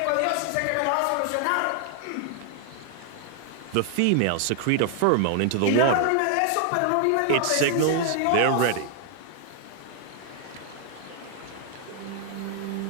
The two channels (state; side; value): different; both; correlation 0.00